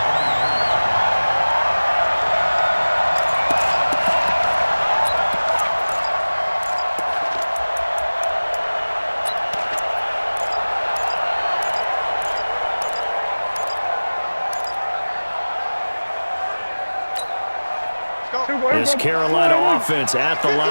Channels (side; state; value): both; inverted; correlation -1.00